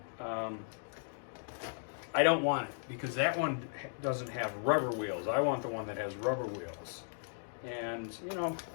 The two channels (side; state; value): right; silent; digital silence